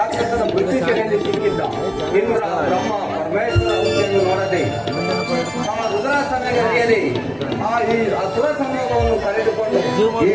ಬುದ್ಧಿಶೆಯಲ್ಲಿ ಸಿಕ್ಕಿದ್ದ ಇಂದ್ರ ಬ್ರಹ್ಮ ಪರಮೇಶ್ವರ ಹುದ್ದೆಯನ್ನು ನೋಡದೆ ಆ ರುದ್ರಾಸನಗರಿಯಲ್ಲಿ ಈ ಅಸುರ ಸಂಯೋಗವನ್ನು ಕರೆದುಕೊಂಡು ಈ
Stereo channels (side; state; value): both; identical; correlation 1.00